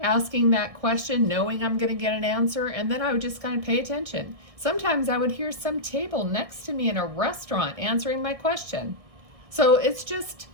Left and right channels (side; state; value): left; late; 1.6 ms